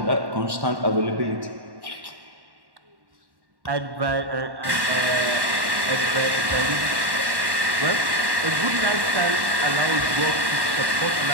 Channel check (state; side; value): late; left; 1.1 ms